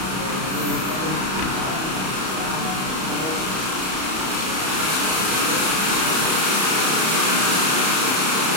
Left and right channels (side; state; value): left; late; 31 ms